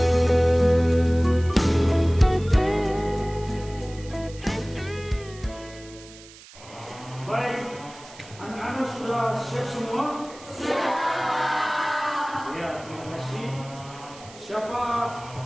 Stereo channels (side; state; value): right; noise; hiss, 20 dB below the sound